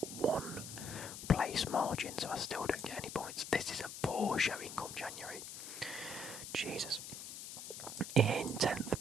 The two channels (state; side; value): noise; left; hiss, 9 dB below the sound